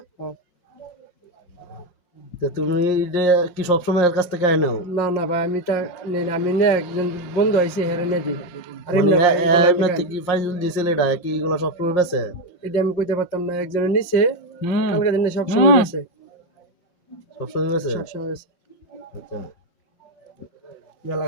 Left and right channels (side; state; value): right; late; 5.7 ms